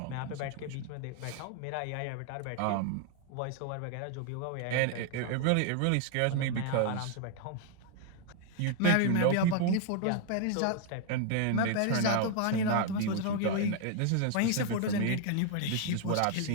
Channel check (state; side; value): different; both; correlation 0.00